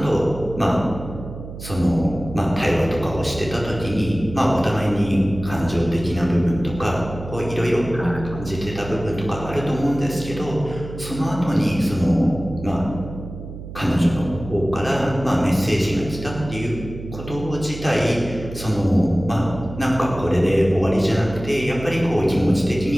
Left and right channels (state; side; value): noise; right; hum, 11 dB below the sound